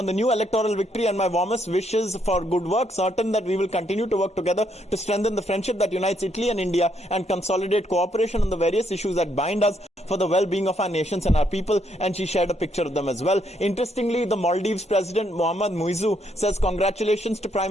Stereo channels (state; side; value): normal; both; correlation 0.73